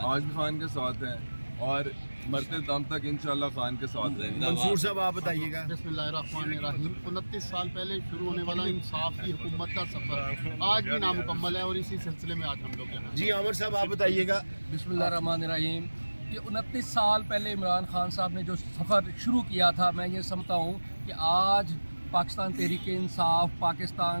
आज भी खान के साथ हैं और मरते दम तक इंशाल्लाह खान के साथ रहेंगे। मंसूर साहब आप बताइएगा। बिस्मिल्लाहिर्रहमानिर्रहीम। 29 साल पहले शुरू होने वाला इंसाफ की हुकूमत का सफ़र आज भी नामुकम्मल है और इसी सिलसिले में आज हम लोग यहाँ। जी आमिर साहब आप बताइएगा। बिस्मिल्लाहिर्रहमानिर्रहीम। ये 29 साल पहले इमरान खान साहब ने जो सफ़र शुरू किया था, मैं ये समझता हूँ कि आज पाकिस्तान तहरीक इंसाफ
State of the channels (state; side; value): inverted; both; correlation -1.00